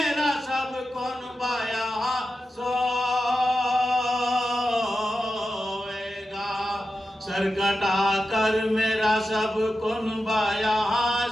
سب کون بایا سوئے گا سر کٹا کر میرا سب کون بایا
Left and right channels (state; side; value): normal; both; correlation 0.91